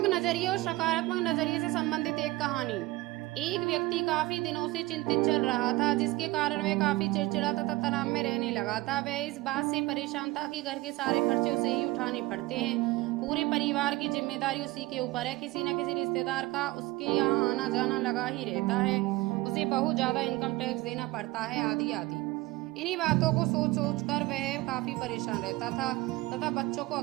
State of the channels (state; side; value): quieter; left; 20.0 dB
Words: नजरिए और सकारात्मक नजरिए से संबंधित एक कहानी। एक व्यक्ति काफी दिनों से चिंतित चल रहा था, जिसके कारण वह काफी चिड़चिड़ा तथा तनाव में रहने लगा था। वह इस बात से परेशान था कि घर के सारे खर्चे उसे ही उठाने पड़ते हैं। पूरे परिवार की जिम्मेदारी उसी के ऊपर है। किसी न किसी रिश्तेदार का उसके यहाँ आना जाना लगा ही रहता है। उसे बहुत ज्यादा इनकम टैक्स देना पड़ता है, आदि आदि। इन्हीं बातों को सोच सोच कर वह काफी परेशान रहता था तथा बच्चों को